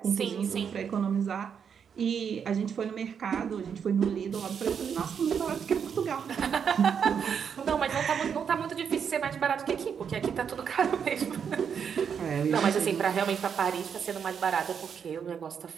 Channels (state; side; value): quieter; left; 7.3 dB